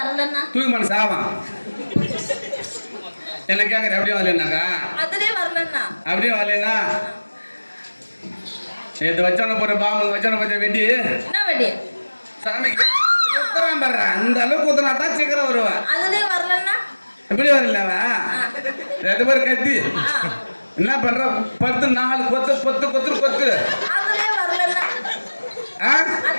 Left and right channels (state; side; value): inverted; both; correlation -1.00